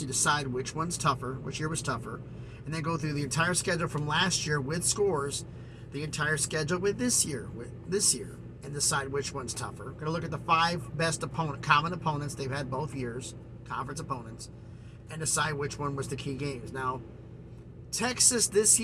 you decide which one's tougher, which year was tougher, and then go through the entire schedule from last year with scores, the entire schedule with this year, and decide which one's tougher. We're going to look at the 5 best common opponents they've had both years, conference opponents, and decide which one was the key games. Now, Texas this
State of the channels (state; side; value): identical; both; correlation 1.00